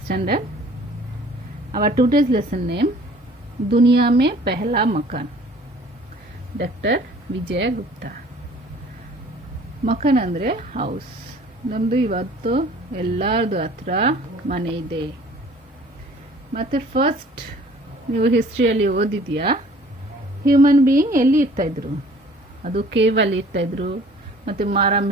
standard. Our today's lesson name दुनिया में पहला मकान. Dr. ವಿಜಯ ಗುಪ್ತಾ. ಮಕಾನ್ ಅಂದರೆ ಹೌಸ್. ನಮ್ಮದು ಇವತ್ತು ಎಲ್ಲರದು ಹತ್ರ ಮನೆ ಇದೆ. ಮತ್ತು ಫಸ್ಟ್ ನೀವು ಹಿಸ್ಟ್ರಿಯಲ್ಲಿ ಓದಿದೆಯಾ, ಹ್ಯೂಮನ್ ಬೀಯಿಂಗ್ ಎಲ್ಲಿ ಇರ್ತಾಯಿದ್ರು? ಅದು ಕೇವಲ್ಲಿ ಇರ್ತಾಯಿದ್ರು ಮತ್ತು ಮರ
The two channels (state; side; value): normal; both; correlation 0.52